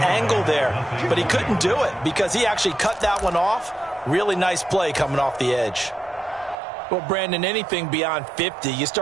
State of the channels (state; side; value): drops out; left; at 6.6 s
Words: there. But he couldn't do it because he actually cut that one off. Really nice play coming off the edge. Well, Brandon, anything beyond 50, you